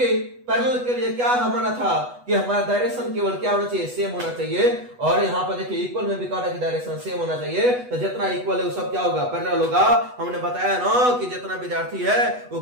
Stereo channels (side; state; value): left; late; 8.1 ms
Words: पैरेलल के लिए क्या हमारा था कि हमारा डायरेक्शन केवल क्या होना चाहिए, सेम होना चाहिए। और यहाँ पर देखिए इक्वल में भी कहा था कि डायरेक्शन सेम होना चाहिए। तो जितना इक्वल है वो सब क्या होगा, पैरेलल होगा। हमने बताया ना कि जितना विद्यार्थी है वो